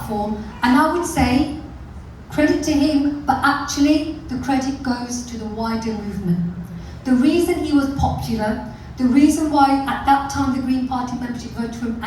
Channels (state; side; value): identical; both; correlation 1.00